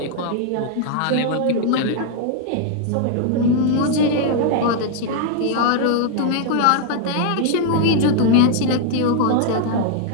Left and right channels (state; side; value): different; both; correlation 0.00